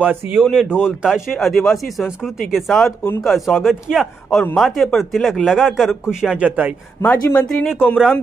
ने ढोल ताशे आदिवासी संस्कृति के साथ उनका स्वागत किया और माथे पर तिलक लगाकर खुशियां जताई। माजी मंत्री ने कोमराम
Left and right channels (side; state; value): left; quieter; 4.9 dB